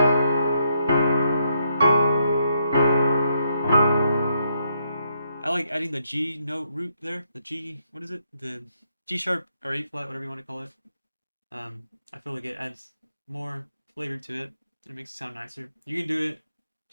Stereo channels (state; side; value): inverted; both; correlation -0.77